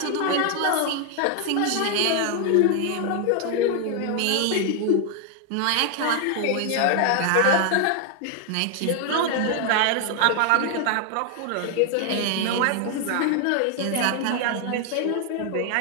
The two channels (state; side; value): different; both; correlation 0.00